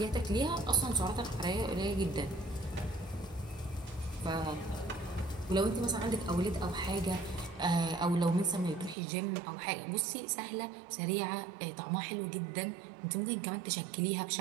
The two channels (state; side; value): drops out; left; at 9.0 s